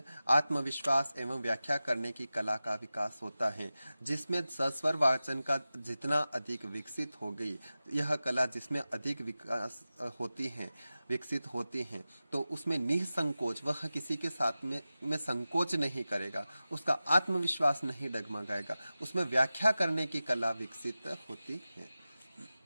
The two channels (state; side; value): inverted; both; correlation -0.95